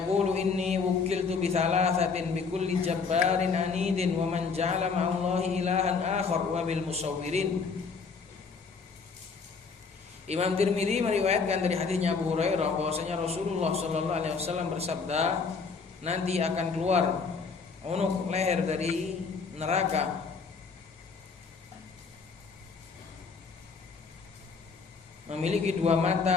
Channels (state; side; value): quieter; right; 5.0 dB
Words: inni wukiltu bi thalathatin bi kulli jabbarin anidin wa man ja'ala ma'allahi ilahan akhar wa bil musawwirin. Imam Tirmidzi meriwayatkan dari hadisnya Abu Hurairah bahwasanya Rasulullah sallallahu alaihi wasallam bersabda, nanti akan keluar unuk leher dari neraka memiliki 2